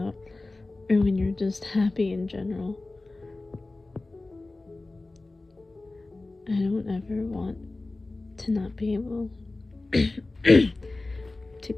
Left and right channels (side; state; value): right; quieter; 3.1 dB